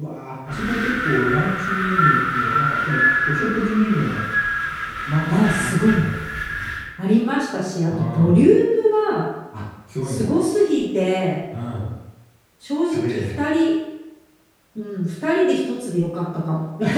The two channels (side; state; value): both; identical; correlation 1.00